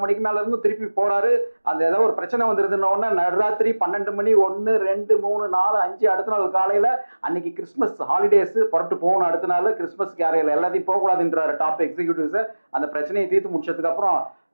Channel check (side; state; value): both; inverted; correlation -1.00